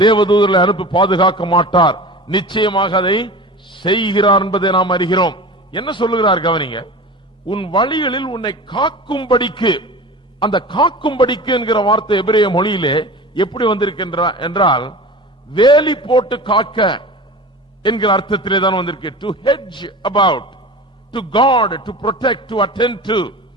தேவதூதர்களை அனுப்பி பாதுகாக்க மாட்டார்? நிச்சயமாக அதை செய்கிறார் என்பதை நாம் அறிகிறோம். என்ன சொல்லுகிறார் கவனிங்க. உன் வழிகளில் உன்னை காக்கும்படிக்கு, அந்த காக்கும்படிக்கு என்கிற வார்த்தை எபிரேய மொழியிலே எப்படி வந்திருக்கின்ற என்றால் வேலி போட்டு காக்க என்கிற அர்த்தத்திலே தான் வந்திருக்கு. To hedge about, to chord, to protect, to attend to,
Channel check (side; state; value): both; normal; correlation 0.35